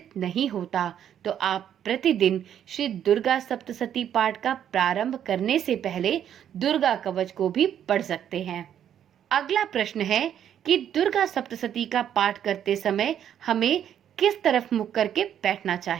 नहीं होता। तो आप प्रतिदिन श्री दुर्गा सप्तशती पाठ का प्रारंभ करने से पहले दुर्गा कवच को भी पढ़ सकते हैं। अगला प्रश्न है कि दुर्गा सप्तशती का पाठ करते समय हमें किस तरफ मुख करके बैठना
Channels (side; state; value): left; quieter; 9.7 dB